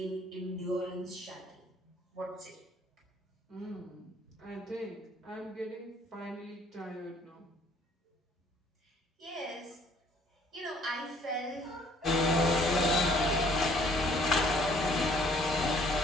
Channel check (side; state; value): both; normal; correlation 0.60